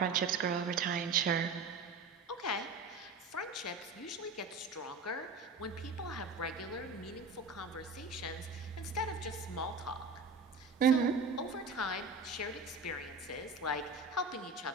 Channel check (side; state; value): left; quieter; 3.8 dB